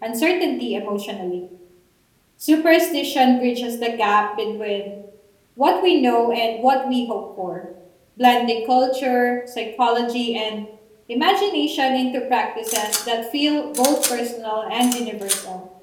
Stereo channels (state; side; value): identical; both; correlation 1.00